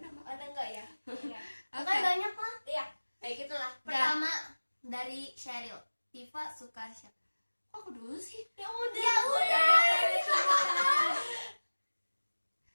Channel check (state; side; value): inverted; both; correlation -1.00